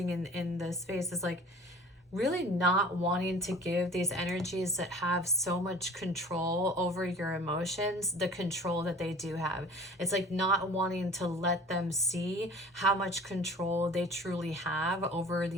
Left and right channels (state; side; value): normal; both; correlation 0.44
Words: in the space is like really not wanting to give these energies that have so much control over your emotions the control that they do have. It's like not wanting to let them see how much control they truly have over